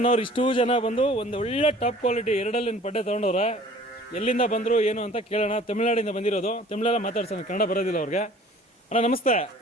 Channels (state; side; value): normal; both; correlation 0.50